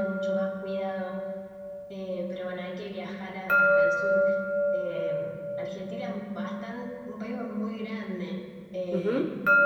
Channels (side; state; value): both; identical; correlation 1.00